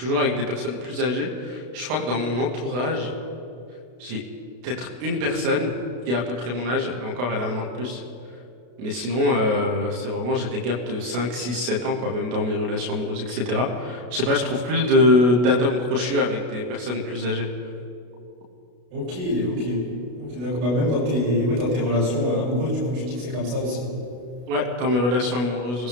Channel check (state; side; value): late; left; 32 ms